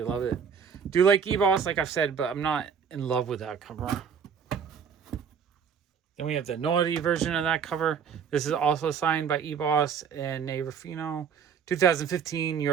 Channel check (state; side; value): quieter; left; 7.0 dB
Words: love it. Do like Eboss, like I've said, but I'm not in love with that cover. Then we have the naughty version of that cover. This is also signed by Eboss and Nate Ruffino. 2015 New